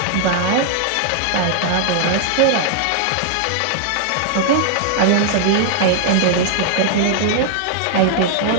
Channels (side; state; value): both; different; correlation 0.00